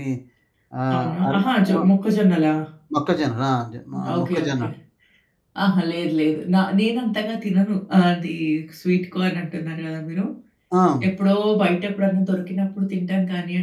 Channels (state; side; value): identical; both; correlation 1.00